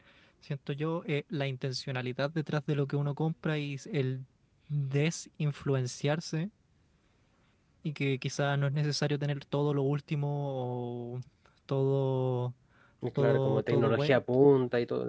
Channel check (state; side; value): identical; both; correlation 1.00